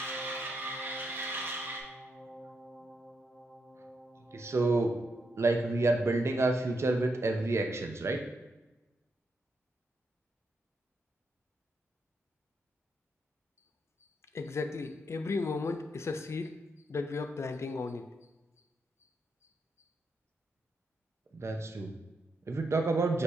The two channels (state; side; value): normal; both; correlation 0.81